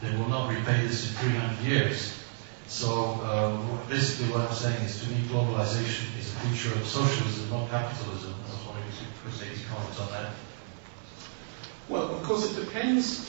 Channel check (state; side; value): silent; left; 57 dB below the other